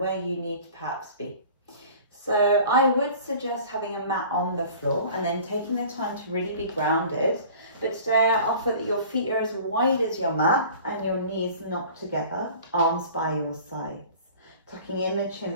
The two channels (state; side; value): inverted; both; correlation -0.45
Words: you need to perhaps be. So I would suggest having a mat on the floor and then taking the time to really be grounded. But today I offer that your feet are as wide as your mat and your knees knocked together, arms by your sides. Tucking in the